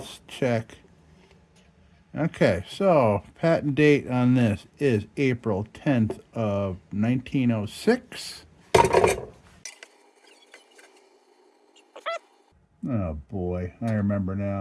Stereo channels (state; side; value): identical; both; correlation 1.00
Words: check. Okay, so patent date on this is April 10th of 1906. Oh boy, I remember